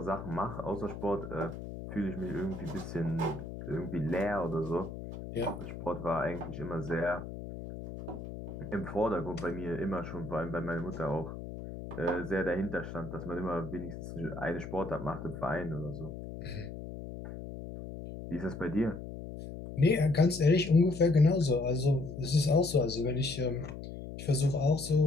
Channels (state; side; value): noise; left; hum, 10 dB below the sound